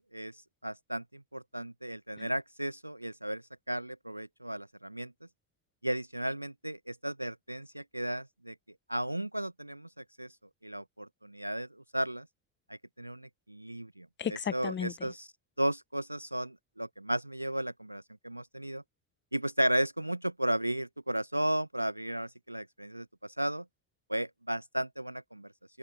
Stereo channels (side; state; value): both; inverted; correlation -0.94